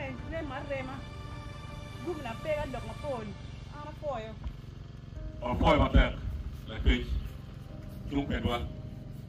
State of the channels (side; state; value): both; identical; correlation 1.00